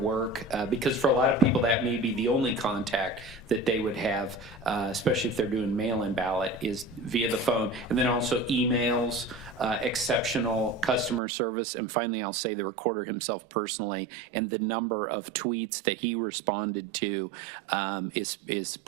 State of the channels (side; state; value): left; drops out; at 11.2 s